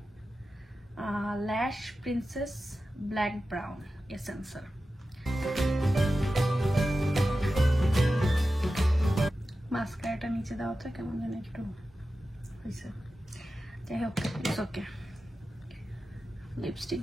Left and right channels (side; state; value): both; normal; correlation 0.93